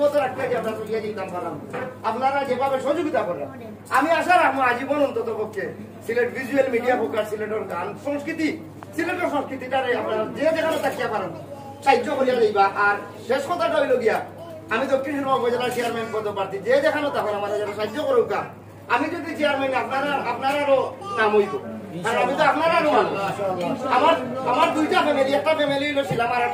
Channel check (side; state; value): both; identical; correlation 1.00